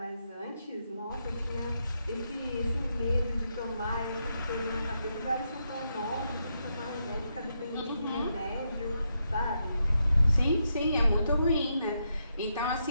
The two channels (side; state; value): both; inverted; correlation -0.82